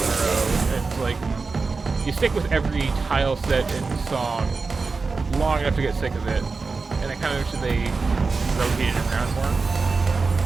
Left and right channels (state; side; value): quieter; left; 4.3 dB